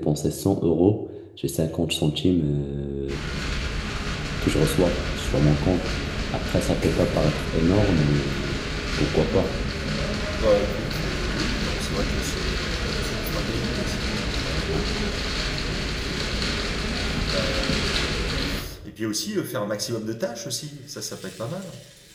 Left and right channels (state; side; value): identical; both; correlation 1.00